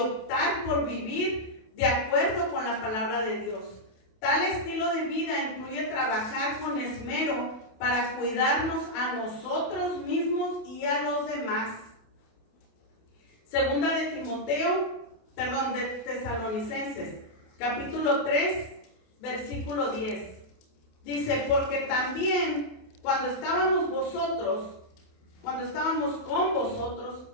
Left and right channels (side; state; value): right; late; 28 ms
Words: por vivir de acuerdo con la palabra de Dios. Tal estilo de vida incluye trabajar con esmero para cuidarnos a nosotros mismos y a los demás. Segunda de Tesalonicenses, capítulo 3, versículo 10. Dice, porque también cuando estábamos con vosotros,